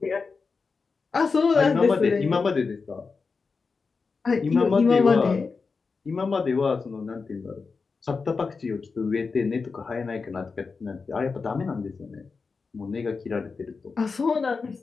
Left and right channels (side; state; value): right; quieter; 4.7 dB